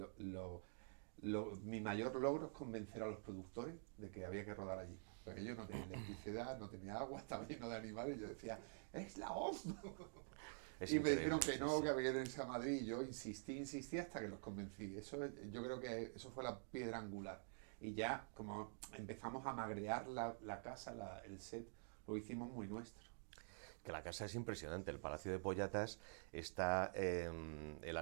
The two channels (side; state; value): left; silent; digital silence